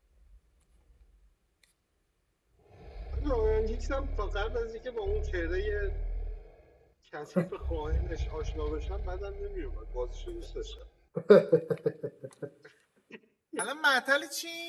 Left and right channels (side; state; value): both; identical; correlation 1.00